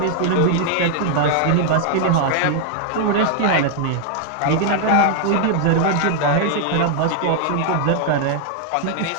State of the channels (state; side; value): different; both; correlation -0.01